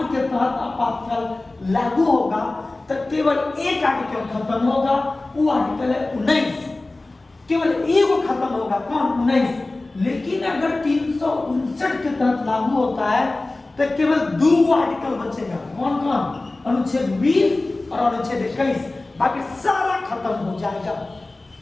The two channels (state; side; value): quieter; right; 3.0 dB